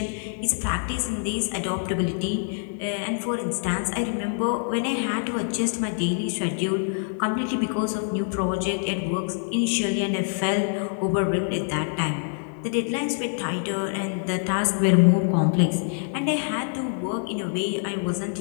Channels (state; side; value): silent; right; digital silence